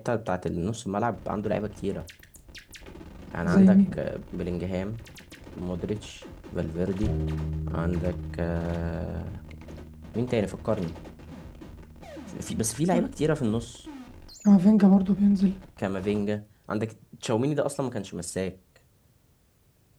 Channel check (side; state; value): both; identical; correlation 1.00